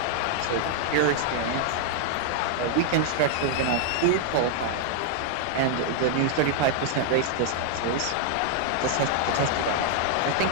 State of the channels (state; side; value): different; both; correlation 0.00